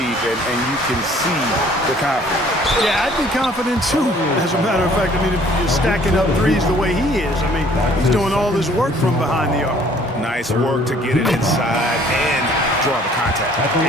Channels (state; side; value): normal; both; correlation 0.57